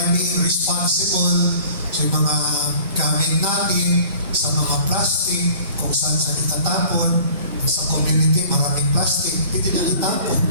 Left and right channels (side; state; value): both; inverted; correlation -0.49